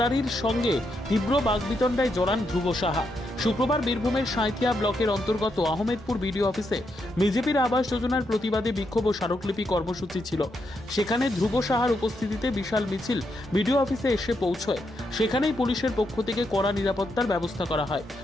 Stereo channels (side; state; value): both; normal; correlation 0.81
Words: সঙ্গে তীব্র বাগবিতণ্ডায় জড়ান ধ্রুব সাহা। শুক্রবার বীরভূমের সাঁইথিয়া ব্লকের অন্তর্গত আহমেদপুর বিডিও অফিসে বিজেপির আবাস যোজনার প্রতিবাদে বিক্ষোভ ও স্মারকলিপি কর্মসূচি ছিল। সেখানে ধ্রুব সাহার উপস্থিতিতে বিশাল মিছিল বিডিও অফিসে এসে পৌঁছয়। সেখানেই পুলিশের পক্ষ থেকে কড়া নিরাপত্তার ব্যবস্থা করা হয়।